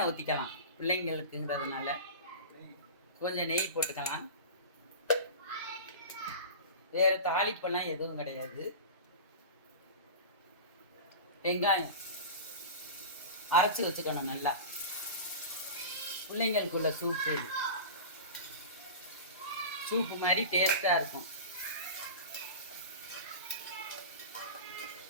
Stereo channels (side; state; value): both; inverted; correlation -0.30